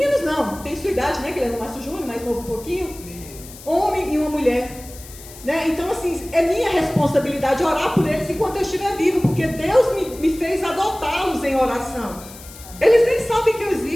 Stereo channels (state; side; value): noise; left; hiss, 17 dB below the sound